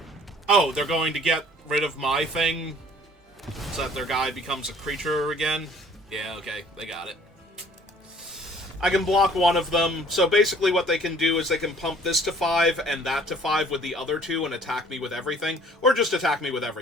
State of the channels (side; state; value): both; normal; correlation 0.54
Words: Oh, they're going to get rid of my thing so that their guy becomes a creature again? Yeah, okay. They got it. I can block one of them. So basically what they can do is they can pump this to 5 and that to 5 with the other 2 and attack me with everything. Or just attack me with